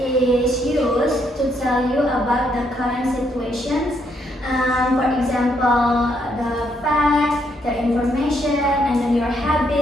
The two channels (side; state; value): both; normal; correlation 0.74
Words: used to tell you about the current situations. For example, the fact, the information, and then your